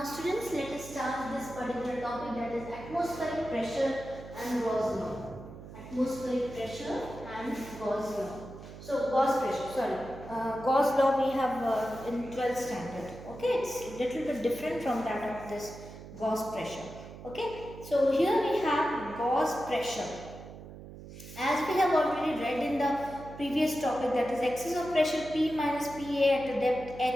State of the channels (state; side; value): noise; right; hum, 14 dB below the sound